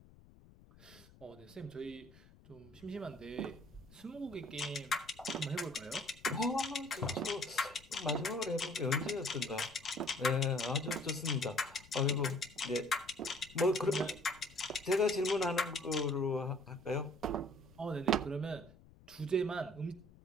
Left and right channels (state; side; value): noise; left; rumble, 23 dB below the sound